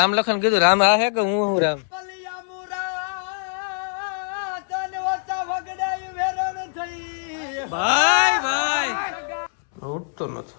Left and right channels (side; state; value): right; silent; 62 dB below the other